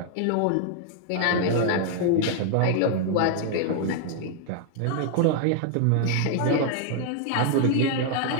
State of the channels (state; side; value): different; both; correlation 0.00